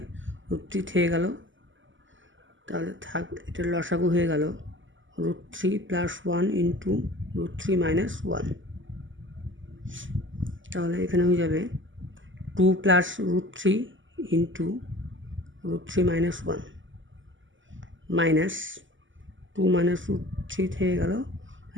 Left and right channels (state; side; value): late; left; 0.55 ms